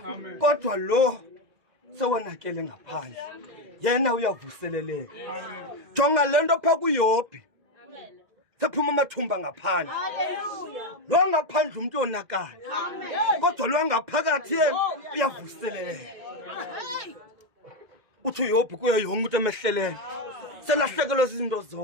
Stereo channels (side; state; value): left; late; 2.0 ms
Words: Kodwa lo sewonakele ngaphandle. Yena uyavuseleleka. Jonga lento pha kuYobhi. Sephuma amathumba ngaphandle. Lo ngaphandle umuntu onakala. Kodwa lo ngaphakathi yena uyavuseleleka. Uthi uYobhi kuyo yonke umuntu emehleleyo. Selahlekelwe izinto